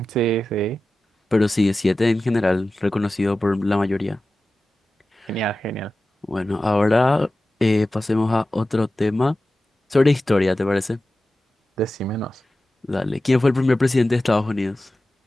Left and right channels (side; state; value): both; normal; correlation 0.94